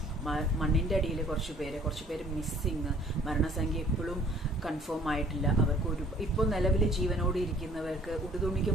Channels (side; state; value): both; normal; correlation 0.55